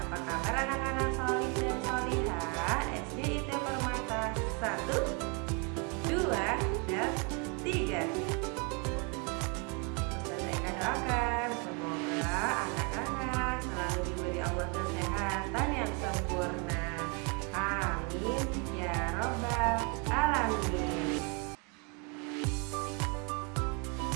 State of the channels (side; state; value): left; quieter; 33.7 dB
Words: kabar anak-anak solih dan solihah SD IT Permata 1, 2, dan 3? Ustazah Eka doakan semoga anak-anak selalu diberi Allah kesehatan yang sempurna. Amin ya robbal alamin.